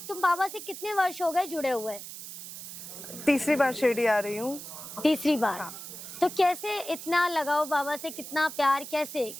बाबा से कितने वर्ष हो गए जुड़े हुए? तीसरी बार शिरडी आ रही हूँ। तीसरी बार। हाँ। तो कैसे इतना लगाओ बाबा से, कितना प्यार, कैसे,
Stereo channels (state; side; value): noise; right; hiss, 11 dB below the sound